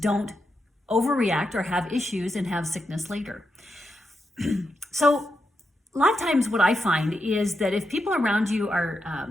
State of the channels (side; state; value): both; normal; correlation 0.86